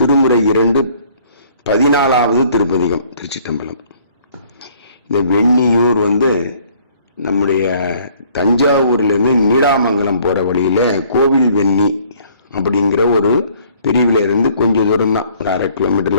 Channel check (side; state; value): both; inverted; correlation -0.59